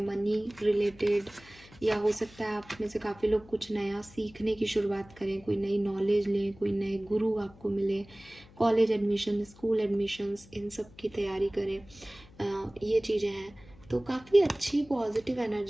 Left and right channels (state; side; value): noise; left; hum, 23 dB below the sound